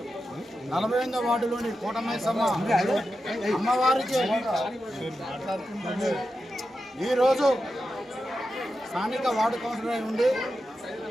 48వ వార్డులోని కోటమైసమ్మ అమ్మవారికి ఈరోజు స్థానిక వార్డు కౌన్సిలర్ ఉండి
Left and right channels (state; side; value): normal; both; correlation 0.89